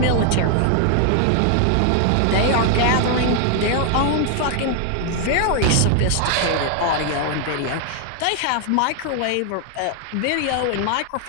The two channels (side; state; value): both; different; correlation 0.00